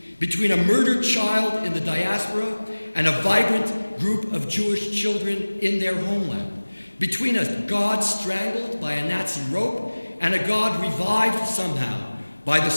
between a murdered child in the diaspora and a vibrant group of Jewish children in their homeland, between a God strangled by a Nazi rope and a God revived somehow by the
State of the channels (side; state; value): both; inverted; correlation -1.00